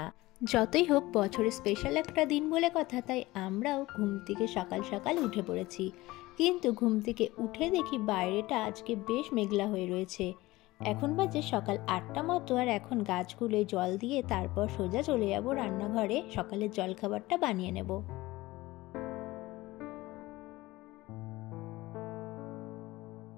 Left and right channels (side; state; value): right; quieter; 19.2 dB